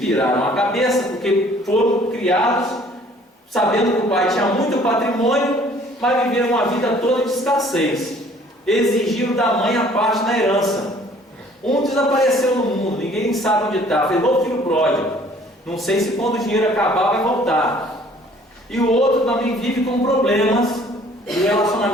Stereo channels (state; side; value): normal; both; correlation 0.55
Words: a cabeça porque foram criados sabendo que o pai tinha muito patrimônio, mas viveram uma vida toda de escassez. Exigiram da mãe a parte da herança. Um desapareceu no mundo, ninguém sabe onde está, fez igual o filho pródigo. Não sei se quando o dinheiro acabar vai voltar. E o outro também vive com problemas de